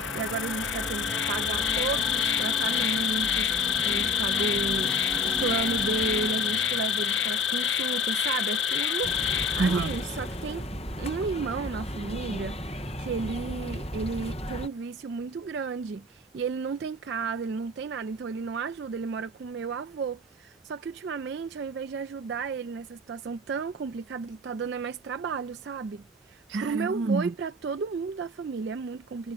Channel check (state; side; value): normal; both; correlation 0.42